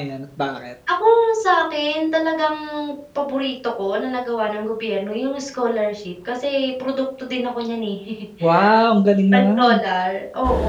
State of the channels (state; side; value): identical; both; correlation 1.00